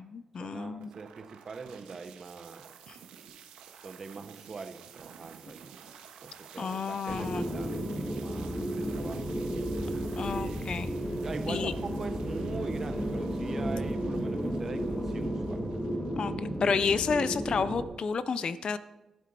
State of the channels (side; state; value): both; normal; correlation 0.84